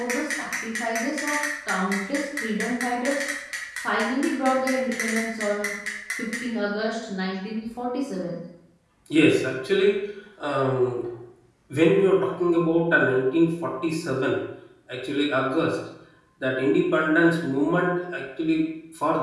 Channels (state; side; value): identical; both; correlation 1.00